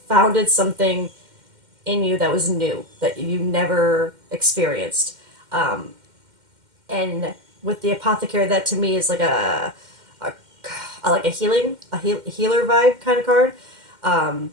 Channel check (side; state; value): left; late; 2.1 ms